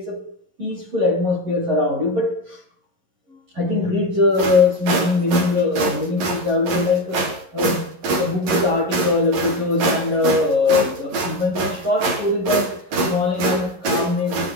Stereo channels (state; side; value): late; left; 11 ms